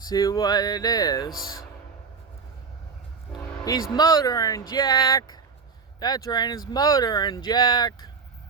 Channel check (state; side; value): quieter; left; 5.4 dB